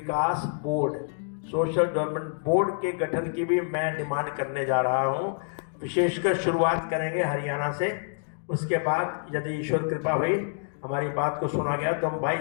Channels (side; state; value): right; silent; digital silence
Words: बोर्ड, सोशल डेवलपमेंट बोर्ड के गठन की भी मैं डिमांड करने जा रहा हूँ। विशेषकर शुरुआत करेंगे हरियाणा से, उसके बाद यदि ईश्वर कृपा हुई हमारी बात को सुना गया तो हम